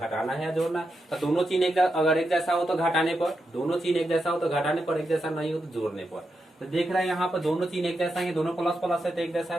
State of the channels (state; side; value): normal; both; correlation 0.86